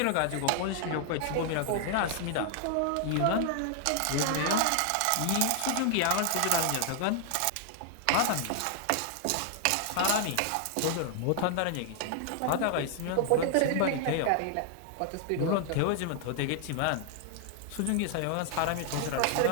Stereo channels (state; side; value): different; both; correlation 0.00